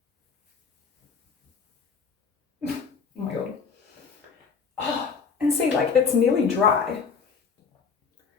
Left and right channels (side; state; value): right; quieter; 5.6 dB